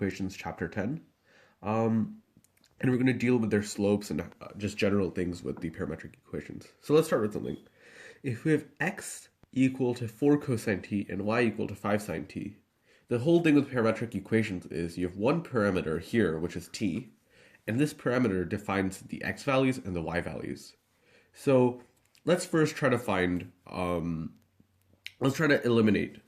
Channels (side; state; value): both; identical; correlation 1.00